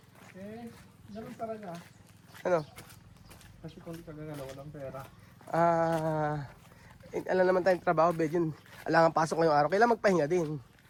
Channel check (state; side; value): identical; both; correlation 1.00